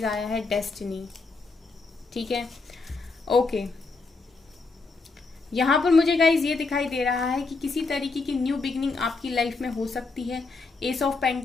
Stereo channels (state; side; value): quieter; right; 4.0 dB